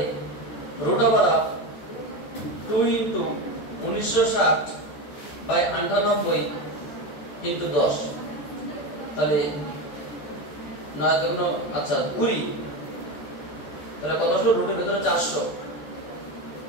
root over 2 into 1960 by 98 into 10, তাহলে 9 দুগুণ, আচ্ছা 20, তাহলে কত আসলো? রুটের ভিতরে 400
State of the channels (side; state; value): right; late; 14 ms